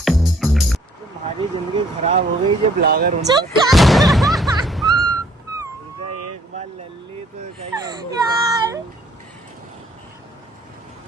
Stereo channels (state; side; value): normal; both; correlation 0.61